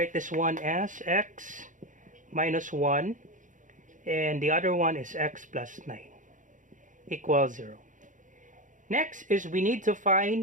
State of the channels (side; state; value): left; late; 0.37 ms